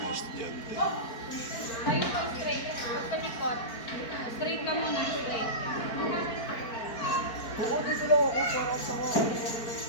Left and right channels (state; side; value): late; right; 4.4 ms